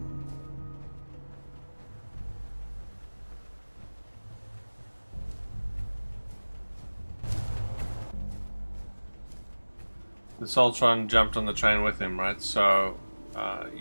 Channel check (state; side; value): inverted; both; correlation -1.00